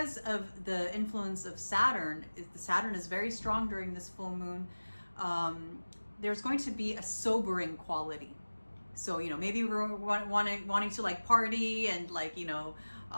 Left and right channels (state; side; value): inverted; both; correlation -1.00